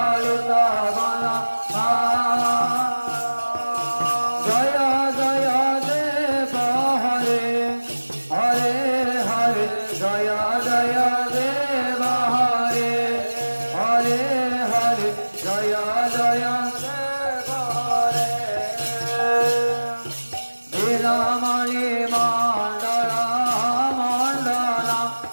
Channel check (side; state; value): both; inverted; correlation -1.00